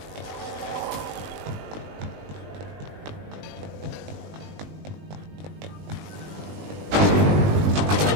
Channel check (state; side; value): late; left; 20 ms